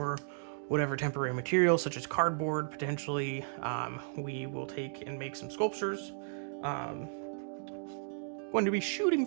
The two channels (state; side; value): silent; left; digital silence